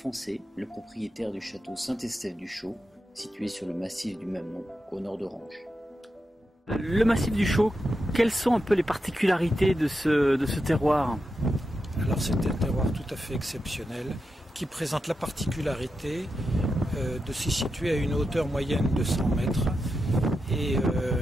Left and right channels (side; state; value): both; normal; correlation 0.88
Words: le propriétaire du château Saint-Estève-du-Chaux, situé sur le massif du même nom, au nord d'Orange. Le massif du Chaux, quelles sont un peu les particularités de ce terroir? Alors c'est un terroir tout à fait exceptionnel qui présente la particularité de s'y situer à une hauteur moyenne de 100 mètres et